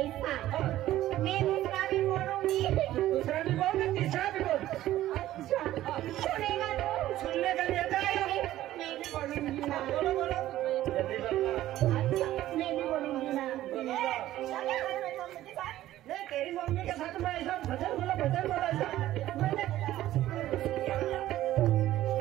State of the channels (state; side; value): quieter; left; 14.2 dB